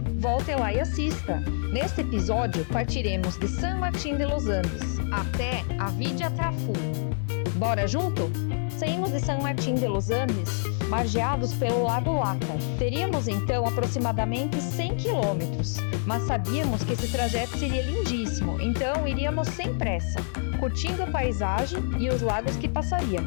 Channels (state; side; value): silent; right; digital silence